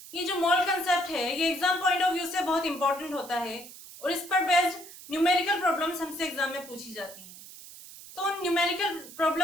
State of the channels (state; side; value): noise; right; hiss, 16 dB below the sound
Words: ये जो मोल कंसेप्ट है ये एग्जाम पॉइंट ऑफ व्यू से बहुत इंपॉर्टेंट होता है और इस पर बेस्ड न्यूमेरिकल प्रॉब्लम्स हमसे एग्जाम में पूछी जाती हैं। तो उन न्यूमेरिकल